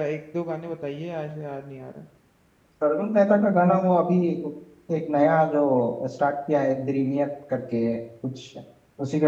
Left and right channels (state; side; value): identical; both; correlation 1.00